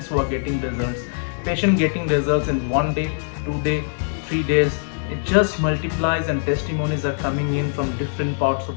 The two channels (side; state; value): right; silent; digital silence